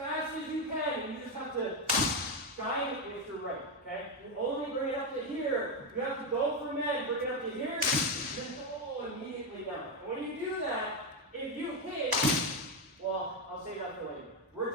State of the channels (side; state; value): both; normal; correlation 0.07